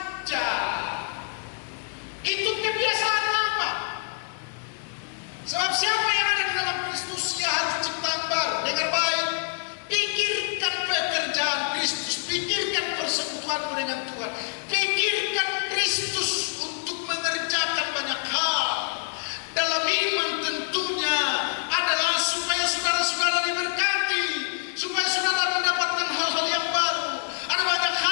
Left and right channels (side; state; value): right; silent; digital silence